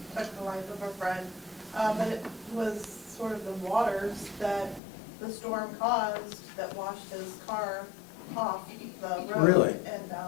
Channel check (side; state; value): right; drops out; at 4.8 s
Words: took the life of a friend. But it was sort of the waters that the storm caused that washed his car off the road. Really? And